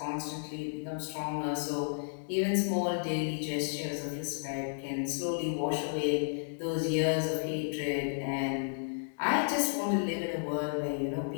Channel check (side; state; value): right; silent; digital silence